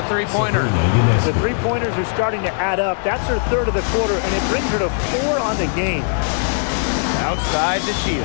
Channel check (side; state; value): right; silent; digital silence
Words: three-pointers. The three-pointers are starting to add up. That's her third of the quarter, and it brings her to 4 on the game. Outside to